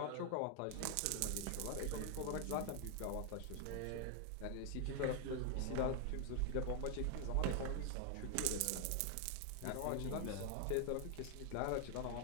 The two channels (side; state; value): both; different; correlation 0.00